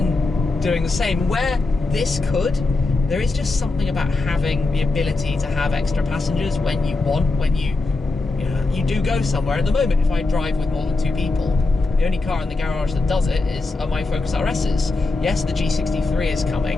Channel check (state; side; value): quieter; right; 3.4 dB